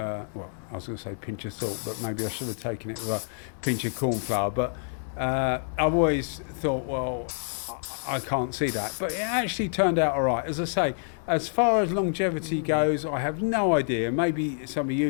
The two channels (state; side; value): silent; right; 60 dB below the other